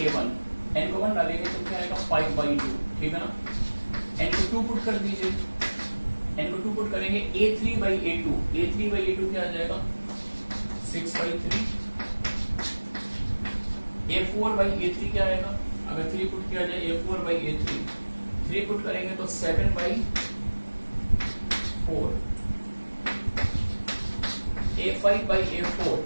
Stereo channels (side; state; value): both; inverted; correlation -1.00